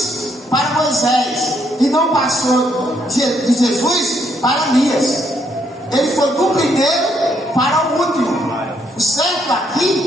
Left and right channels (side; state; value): both; normal; correlation 0.73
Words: para Moisés e não passou de Jesus para Elias. Ele foi do primeiro para o último. O certo